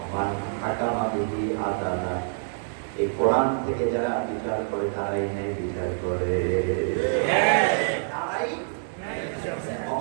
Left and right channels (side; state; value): left; silent; digital silence